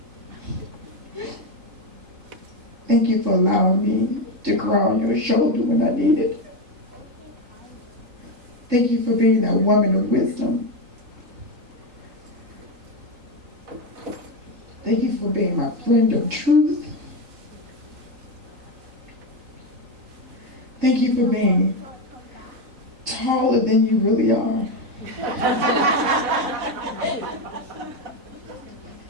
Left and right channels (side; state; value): left; late; 3.9 ms